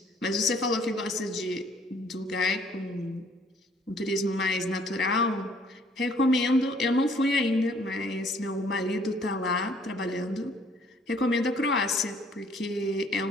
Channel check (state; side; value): normal; both; correlation 0.61